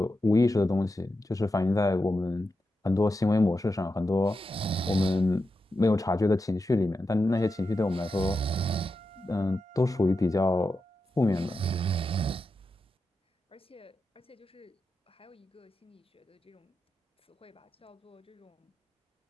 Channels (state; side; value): normal; both; correlation 0.89